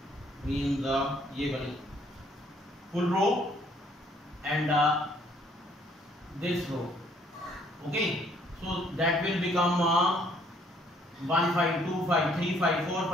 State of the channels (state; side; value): normal; both; correlation 0.64